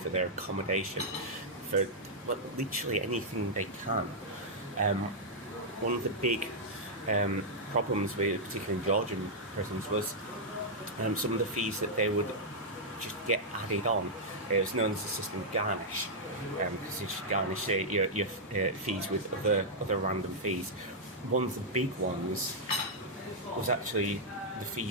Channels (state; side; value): normal; both; correlation -0.06